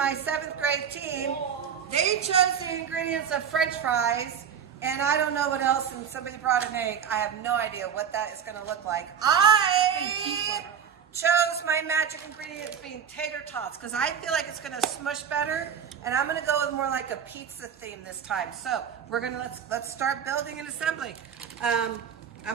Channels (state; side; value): quieter; left; 7.9 dB